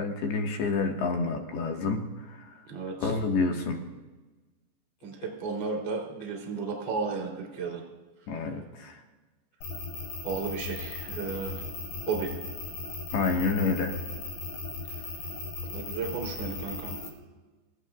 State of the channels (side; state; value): right; late; 14 ms